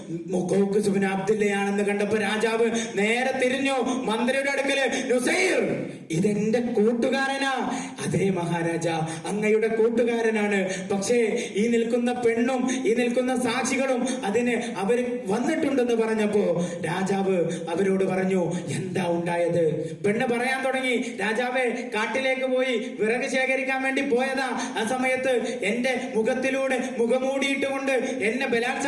മുഖോഖുസ് ബിൻ അബ്ദില്ലയാണെന്ന് കണ്ടപ്പോ രാജാവ് നേരെ തിരിഞ്ഞു മന്ത്രിയുടെ അടുക്കല്. നുസൈർ, ഇതെന്റെ കൂട്ടുകാരനാ. അതേ മഹാരാജ, അങ്ങയുടെ കൂട്ടുകാരനാണ്. പക്ഷേ ഈ നിൽക്കുന്ന പെണ്ണും ഈ നിൽക്കുന്ന സാക്ഷികളും അതിന് അവര് വന്നിട്ടുണ്ടെന്ന് പറഞ്ഞപ്പോ രാജാവ് അവരോട് പറഞ്ഞു എന്താ ഉണ്ടായത്? പെണ്ണ് പറയാൻ തുടങ്ങി. രാജാവേ, കാട്ടിലേക്ക് പോയി വിറക് ശേഖരിക്കാൻ വേണ്ടി പോയതാ. ആ സമയത്ത് എന്റെ മുഖത്തിലൂടെ മുഖമൂടിയിട്ടുകൊണ്ട് എന്നെ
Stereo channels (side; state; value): both; identical; correlation 1.00